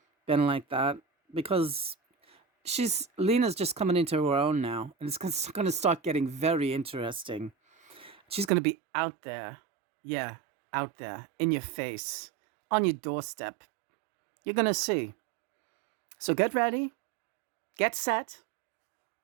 been like that, because Lena's just coming into her own now, and it's going to start getting very interesting. She's going to be out there. Yeah, out there, in your face, on your doorstep. You're going to see. So get ready, get set,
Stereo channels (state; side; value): drops out; left; at 8.5 s